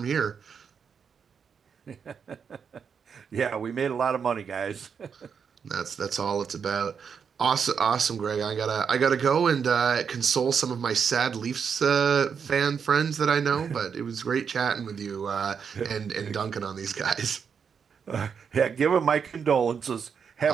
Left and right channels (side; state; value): left; quieter; 6.7 dB